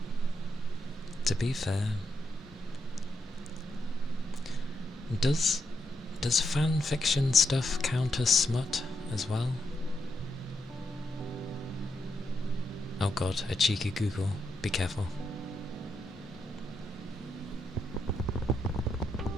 To be fair, does fan fiction stuff count as smut as well? Oh god, a cheeky Google. Be careful.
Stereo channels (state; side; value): normal; both; correlation 0.82